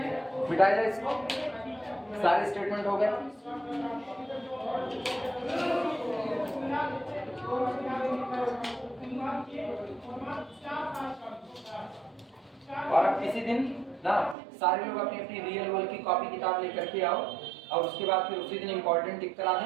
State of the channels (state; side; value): drops out; left; at 14.4 s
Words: मिटाया जाए इसको, सारे स्टेटमेंट हो गए। और अब किसी दिन ना सारे लोग अपनी अपनी रियल वर्ल्ड की कॉपी किताब लेकर के आओ, और उसके बाद फिर उसी दिन इंपॉर्टेंट टिक करा